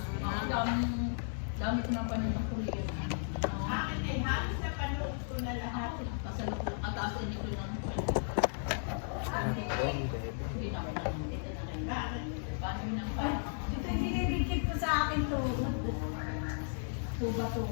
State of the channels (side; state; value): right; silent; digital silence